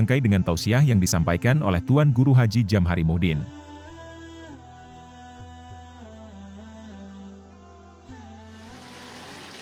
dengan tausiah yang disampaikan oleh Tuan Guru Haji Jamhari Muhdin.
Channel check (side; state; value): both; identical; correlation 1.00